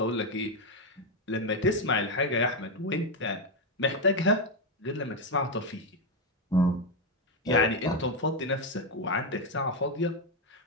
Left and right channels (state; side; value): normal; both; correlation 0.06